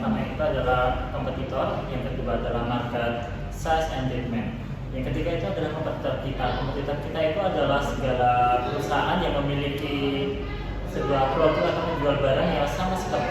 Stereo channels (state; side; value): identical; both; correlation 1.00